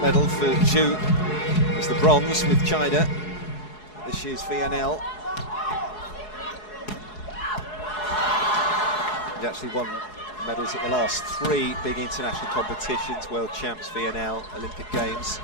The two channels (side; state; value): right; late; 4.7 ms